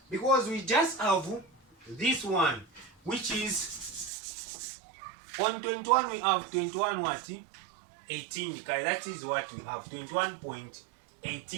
Because we just have this one, which is on 21 we have 21 what? 18 the card. That is what we have,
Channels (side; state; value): left; drops out; at 4.1 s